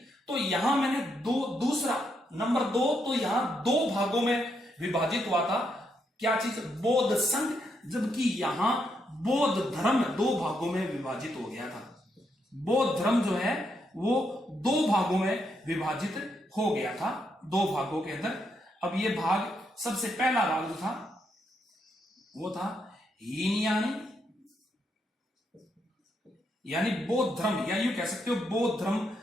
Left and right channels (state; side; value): normal; both; correlation 0.79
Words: तो यहां मैंने दूसरा नंबर 2, तो यहां 2 भागों में विभाजित हुआ था। क्या चीज? बौद्ध संघ, जबकि यहां बौद्ध धर्म 2 भागों में विभाजित हो गया था। बौद्ध धर्म जो है वो 2 भागों में विभाजित हो गया था, 2 भागों के अंदर। अब ये भाग, सबसे पहला भाग जो था वो था हीनयानी, यानी बौद्ध धर्म, या यूं कह सकते हो बौद्ध धर्म